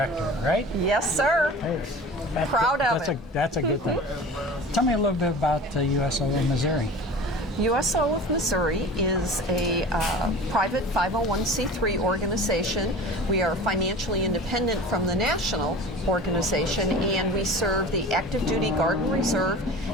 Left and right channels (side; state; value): both; normal; correlation 0.37